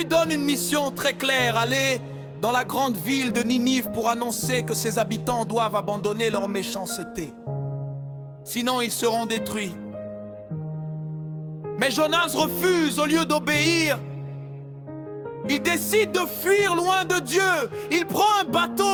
donne une mission très claire, aller dans la grande ville de Ninive pour annoncer que ses habitants doivent abandonner leur méchanceté. Sinon ils seront détruits. Mais Jonas refuse au lieu d'obéir. Il décide de fuir loin de Dieu. Il prend un bateau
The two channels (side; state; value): both; identical; correlation 1.00